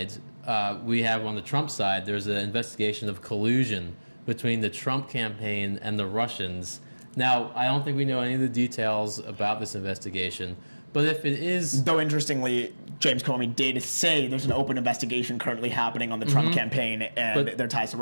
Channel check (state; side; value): inverted; both; correlation -1.00